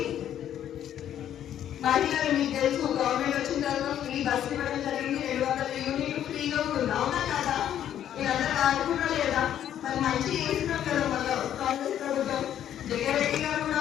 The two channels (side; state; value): right; quieter; 10.6 dB